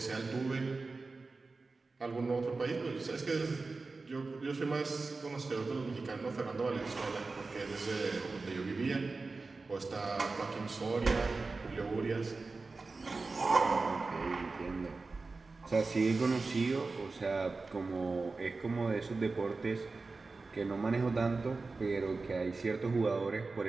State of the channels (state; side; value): quieter; left; 3.8 dB